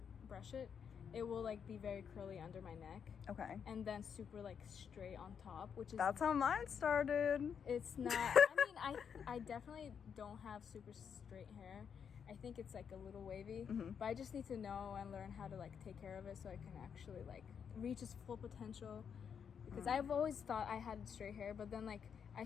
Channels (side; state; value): right; quieter; 7.3 dB